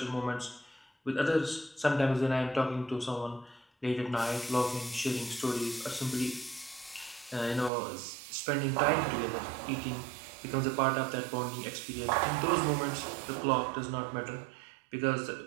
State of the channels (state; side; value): drops out; left; at 7.7 s